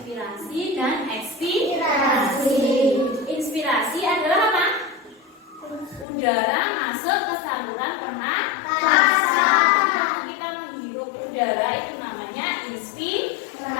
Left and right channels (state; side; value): drops out; right; at 6.1 s